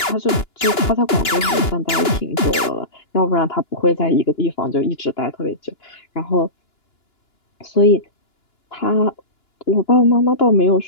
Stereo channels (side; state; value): right; late; 2.9 ms